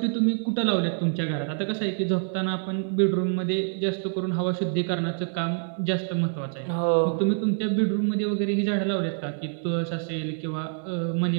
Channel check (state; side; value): silent; left; 61 dB below the other